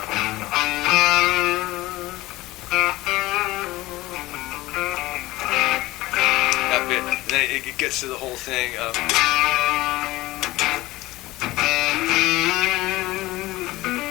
That bit, and then it gets to the whole thing of.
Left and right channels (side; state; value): right; quieter; 18.6 dB